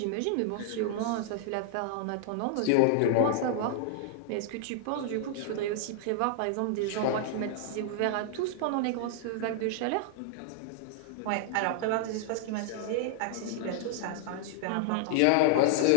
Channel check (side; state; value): both; different; correlation -0.01